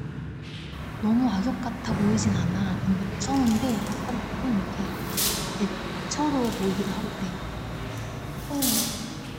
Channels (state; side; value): identical; both; correlation 1.00